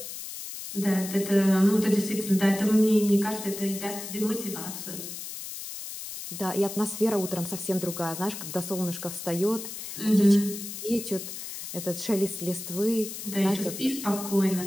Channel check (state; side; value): noise; left; hiss, 9 dB below the sound